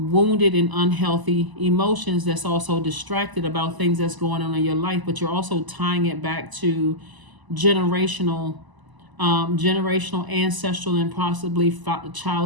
and unhealthy emotions that's also distracted about things that's going on in your life, but you're also tying it back to generational, ancestral, and possibly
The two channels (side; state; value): left; late; 1.0 ms